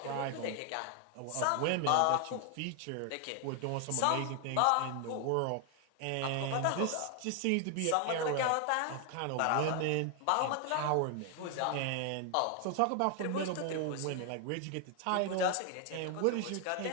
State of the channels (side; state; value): both; different; correlation 0.00